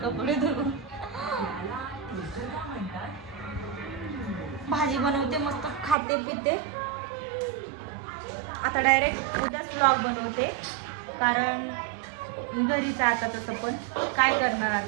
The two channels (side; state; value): left; drops out; at 6.0 s